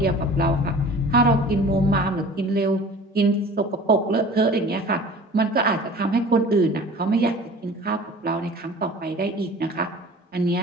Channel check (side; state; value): both; normal; correlation 0.44